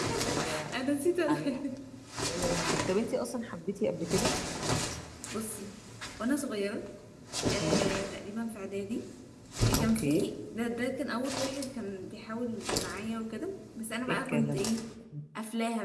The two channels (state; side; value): identical; both; correlation 1.00